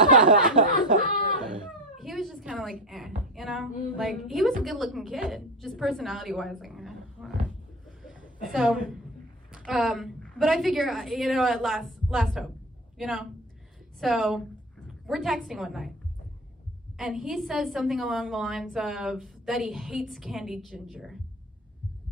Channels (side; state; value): both; normal; correlation 0.26